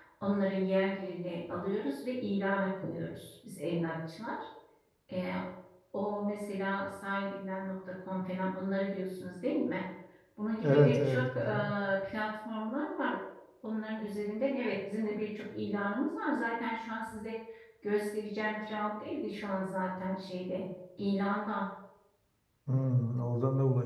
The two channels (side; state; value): both; identical; correlation 1.00